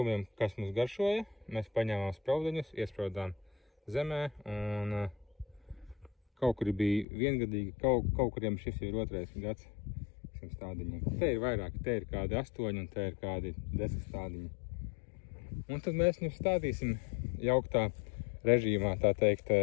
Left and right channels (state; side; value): drops out; right; at 7.1 s